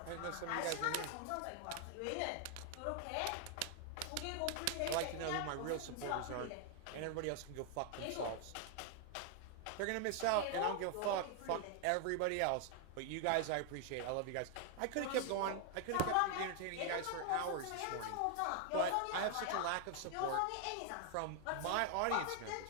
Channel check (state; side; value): different; both; correlation 0.00